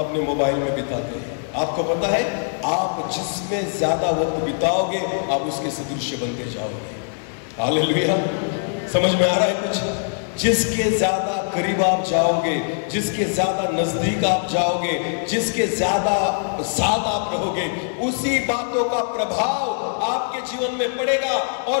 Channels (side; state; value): right; silent; digital silence